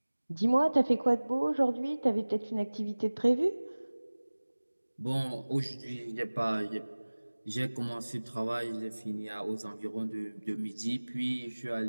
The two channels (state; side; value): inverted; both; correlation -1.00